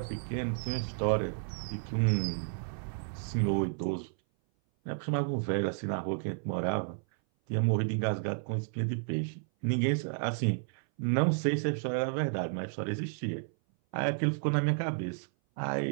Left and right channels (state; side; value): silent; left; 56 dB below the other